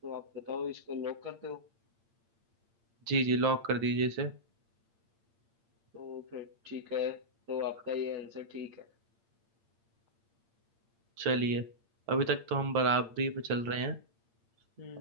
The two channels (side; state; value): left; late; 8.7 ms